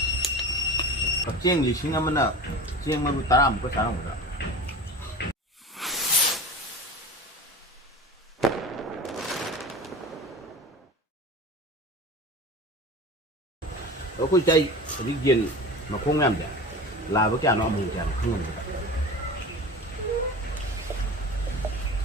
chiên gì xin mà nó chiên mà ta làm có sao không được ở cái chay cái gì mà không làm được là với cái nó mình chẳng không làm được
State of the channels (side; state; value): both; normal; correlation 0.33